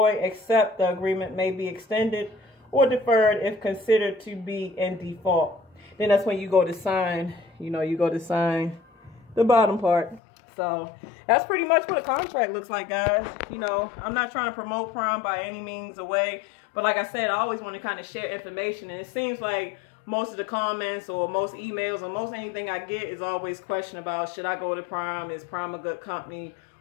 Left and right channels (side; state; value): right; drops out; at 10.2 s